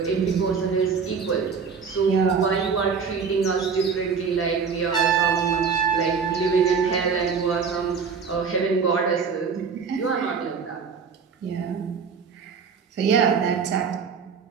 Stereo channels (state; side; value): quieter; left; 5.9 dB